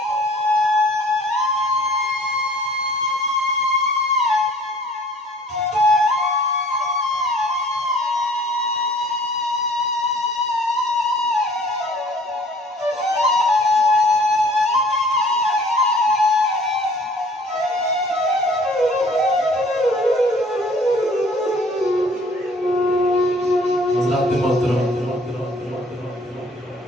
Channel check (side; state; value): both; normal; correlation 0.53